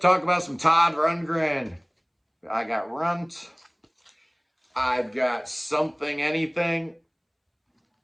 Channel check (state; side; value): identical; both; correlation 1.00